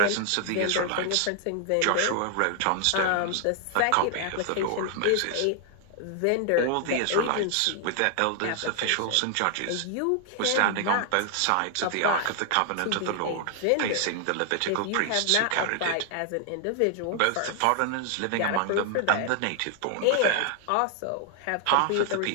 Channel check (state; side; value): different; both; correlation 0.00